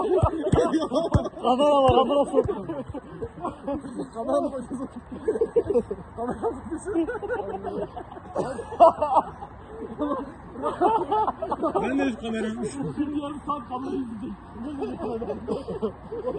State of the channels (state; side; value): identical; both; correlation 1.00